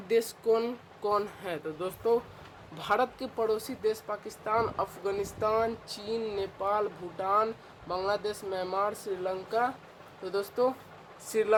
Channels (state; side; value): identical; both; correlation 1.00